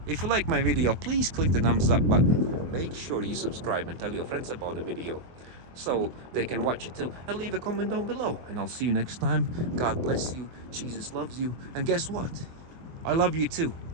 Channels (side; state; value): left; late; 24 ms